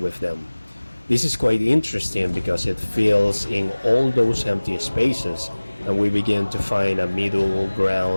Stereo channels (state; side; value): inverted; both; correlation -1.00